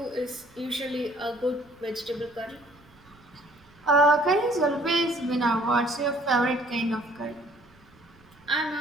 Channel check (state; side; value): noise; right; rumble, 28 dB below the sound